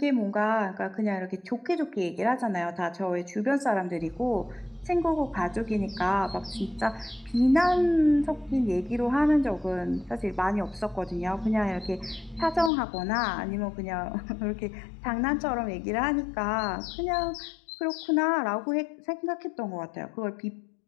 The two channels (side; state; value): right; drops out; at 12.7 s